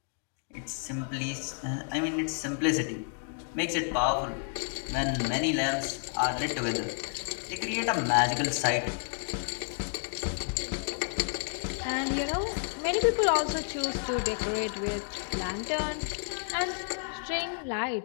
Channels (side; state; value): right; silent; 57 dB below the other